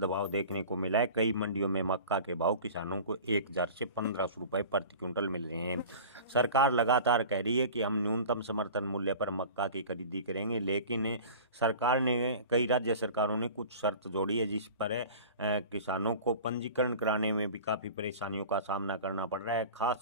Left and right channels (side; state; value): both; inverted; correlation -0.39